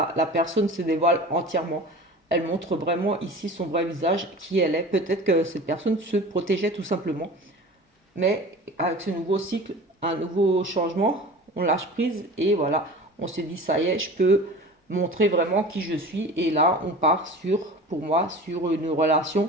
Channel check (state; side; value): normal; both; correlation 0.38